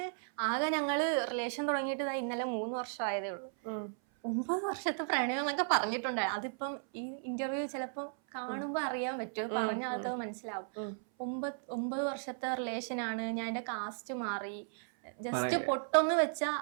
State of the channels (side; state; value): left; silent; 54 dB below the other